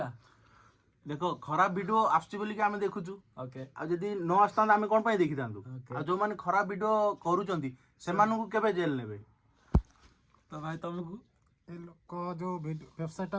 देखो खराब वीडियो आसुची बोली आमे देखुछु ओके आ जदी न आस्तांत आमे कोन पई देखितांतु आ जो माने खराब वीडियो करूचंती सेमानु को केबे जेल नेबे तो भाई तुमको ए लोक जो वेबसाइट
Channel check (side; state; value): both; identical; correlation 1.00